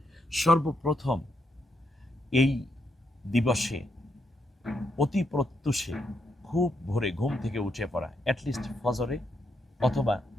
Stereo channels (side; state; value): both; normal; correlation 0.79